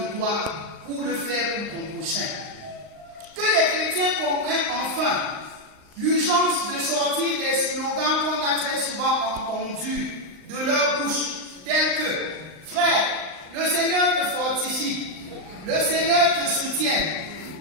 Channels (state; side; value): late; left; 39 ms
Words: toi pour le faire pour ton prochain. Que les chrétiens comprennent enfin l'urgence de sortir des slogans qu'on a très souvent entendus de leur bouche, tels que « Frère, le Seigneur te fortifie, le Seigneur te soutienne.